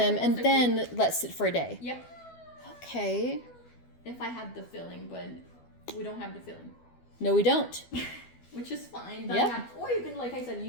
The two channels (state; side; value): late; right; 12 ms